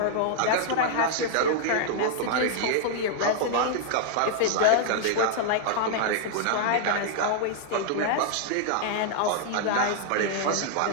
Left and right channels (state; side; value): different; both; correlation -0.01